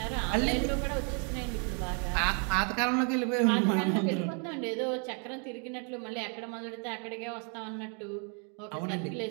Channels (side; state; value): left; quieter; 38.8 dB